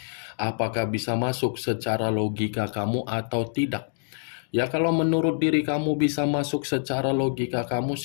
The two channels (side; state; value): right; silent; digital silence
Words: Apakah bisa masuk secara logika kamu atau tidak? Ya, kalau menurut diri kamu bisa masuk secara logika kamu,